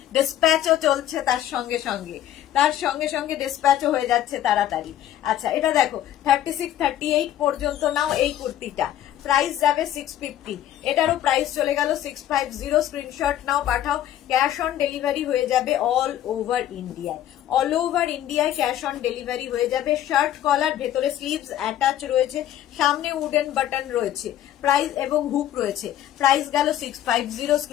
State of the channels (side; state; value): right; quieter; 11.9 dB